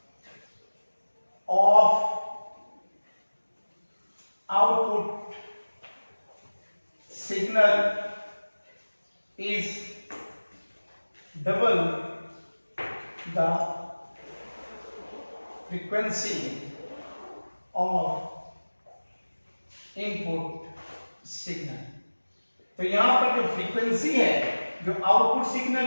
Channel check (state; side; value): inverted; both; correlation -1.00